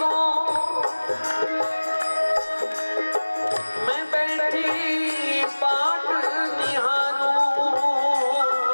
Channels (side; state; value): both; inverted; correlation -1.00